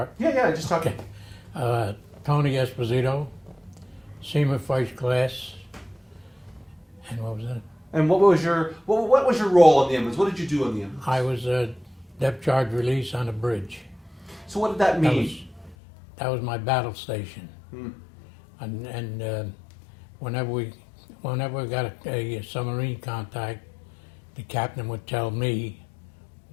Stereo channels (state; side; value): drops out; right; at 15.8 s